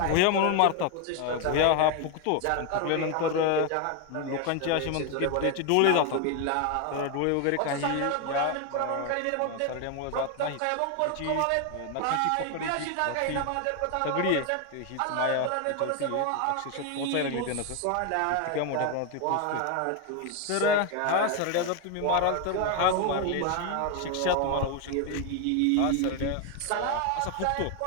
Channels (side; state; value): both; different; correlation 0.01